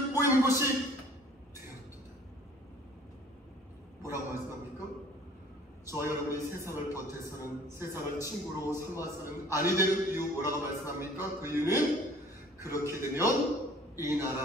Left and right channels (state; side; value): normal; both; correlation 0.51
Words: 모이는 곳이 되었도다. 뭐라고 말씀합니까? 저와 여러분이 세상을 버텨서는, 세상을 친구로 삼아서는 아니 되는 이유 뭐라고 말씀합니까? 그 이유는 그렇게 되면 이